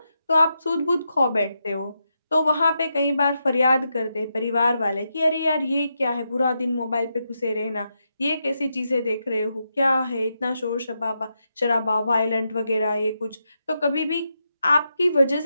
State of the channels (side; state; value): both; inverted; correlation -0.84